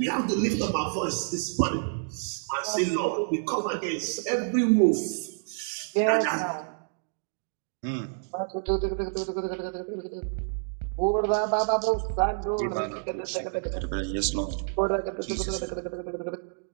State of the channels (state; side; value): silent; left; digital silence